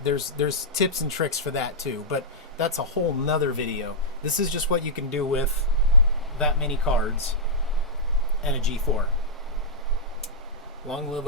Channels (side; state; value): both; normal; correlation -0.10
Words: there's tips and tricks for that too, but that's a whole nother video. This is just what you can do with that many cards and a G4. Long live